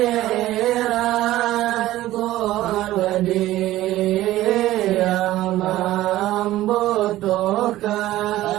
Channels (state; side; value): quieter; left; 15.4 dB